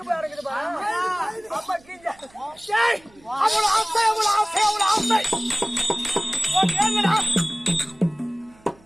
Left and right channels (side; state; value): right; noise; hum, 29 dB below the sound